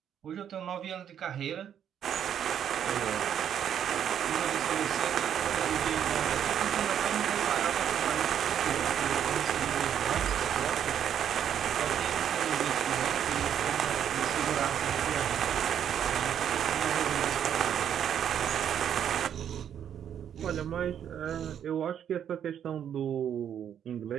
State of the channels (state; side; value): quieter; left; 9.2 dB